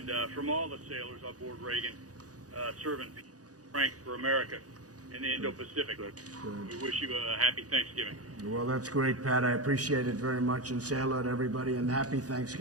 from all the sailors aboard Reagan, serving strength for America in the Indo-Pacific. We wish you a happy Thanksgiving. Well, that's great, Pat. I appreciate it very much, and say hello to everybody, and happy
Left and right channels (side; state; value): left; late; 0.67 ms